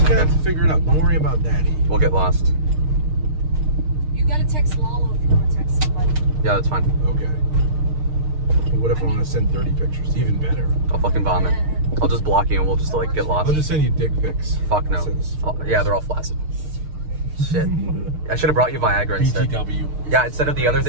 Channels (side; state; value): left; late; 6.5 ms